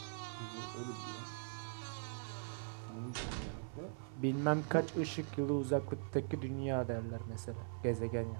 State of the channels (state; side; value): silent; left; 50 dB below the other